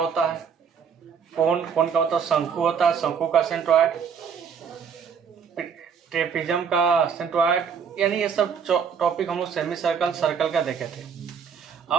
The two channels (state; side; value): quieter; left; 6.8 dB